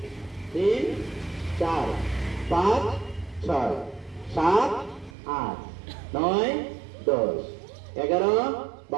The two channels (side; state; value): left; drops out; at 5.1 s